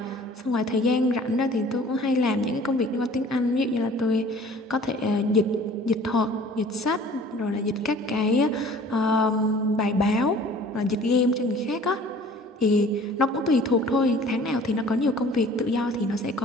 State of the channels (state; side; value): normal; both; correlation 0.49